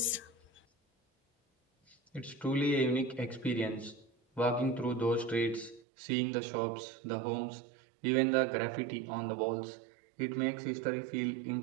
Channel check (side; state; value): left; drops out; at 5.8 s